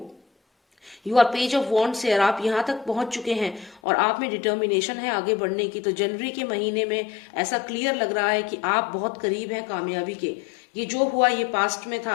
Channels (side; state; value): right; drops out; at 3.8 s